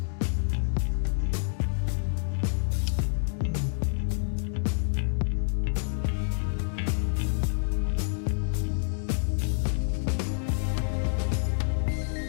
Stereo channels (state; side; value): silent; right; digital silence